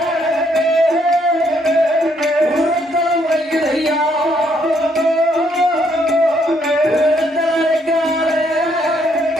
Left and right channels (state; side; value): normal; both; correlation 0.71